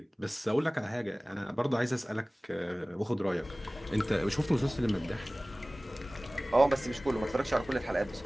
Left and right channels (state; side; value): normal; both; correlation 0.98